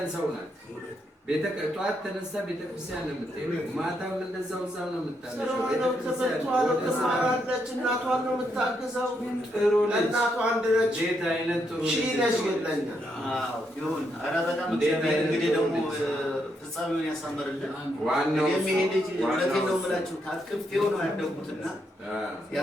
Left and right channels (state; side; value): normal; both; correlation 0.78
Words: ሰው ናት። ጠዋት ተነሳ ቤተክርስቲያን ነው የምትሄደው፣ ማታም እንደዛው እዛው ነው የምታለቅሰው። እናቷን ነው የምታግዘው። ጥሩ ለእናቷ አንድ ነች። እንዴት አይነት ጥሩ ነሽ ይለኛል። ይሁን። ኧረ በጣም እንግዲህ ደግሞ ፍጻሜውን ያሳምርልን። ዋናው የሚሄድ ልጅ እውነቴን ነው የምላችሁ ታቅፌው ነው ያደግኩትና